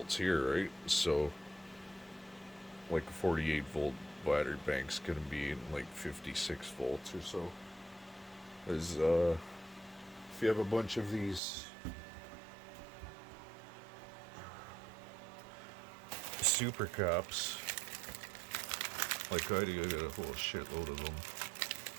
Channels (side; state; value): left; drops out; at 11.4 s